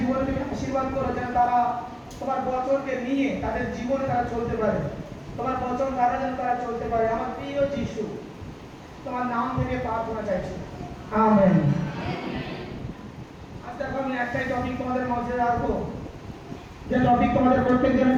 তুমি আশীর্বাদ করো, যেন তারা তোমার বচনকে নিয়ে তাদের জীবনে তারা চলতে পারে, তোমার বচন দ্বারা যেন তারা চলতে পারে। আমার প্রিয় যিশু, তোমার নাম থেকে প্রার্থনা চাইছি, আমেন। আজ দেখো আমি একটাই টপিক তোমাদের মধ্যে রাখবো, যে টপিক তোমাদের প্রত্যেকজনের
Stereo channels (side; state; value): both; identical; correlation 1.00